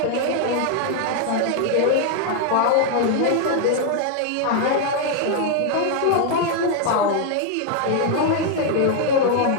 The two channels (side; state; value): both; different; correlation 0.00